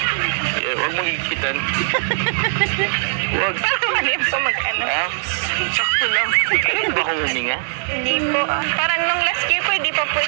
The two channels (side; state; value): left; silent; digital silence